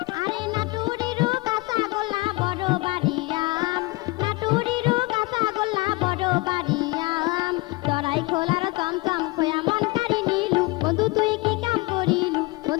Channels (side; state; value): right; quieter; 23.1 dB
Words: আরে নাটুরিরু কাঁচা গোলা বড় বাড়িয়াম নাটুরিরু কাঁচা গোলা বড় বাড়িয়াম চড়াই খোলার চমচম খোয়া মন কারি নিলু বন্ধু তুই কি কাম করিলু